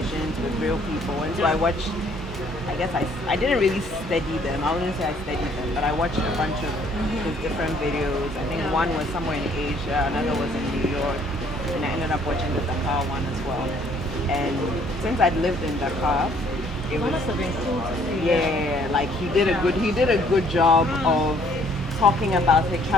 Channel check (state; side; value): normal; both; correlation 0.61